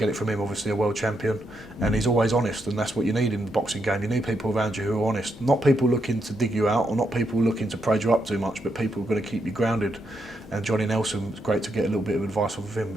it from him, obviously a world champion, and he's always honest, and that's what you need in the boxing game. You need people around you who are honest, not people looking to dig you out or not people looking to praise you up too much, but people who are going to keep you grounded. And Johnny Nelson, it's great to get a little bit of advice off of him,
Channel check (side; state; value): both; normal; correlation 0.80